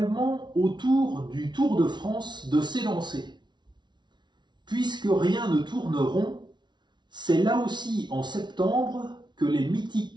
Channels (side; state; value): left; late; 0.21 ms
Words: au tour du Tour de France de s'élancer. Puisque rien ne tourne rond, c'est là aussi en septembre que les